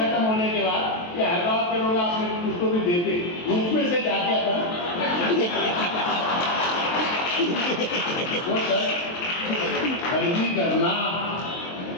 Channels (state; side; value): late; right; 23 ms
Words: होने के बाद ये हैदराबाद के लोग आपने उसको भी देते, उसमें से क्या क्या था वो शर्ट खरीदी करना,